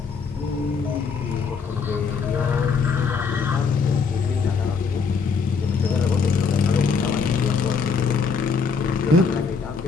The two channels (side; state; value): right; quieter; 5.4 dB